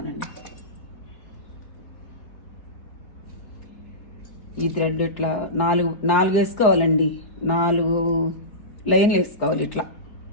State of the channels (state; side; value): late; right; 4.4 ms